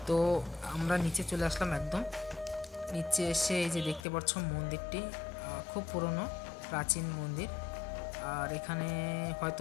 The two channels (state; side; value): drops out; right; at 4.0 s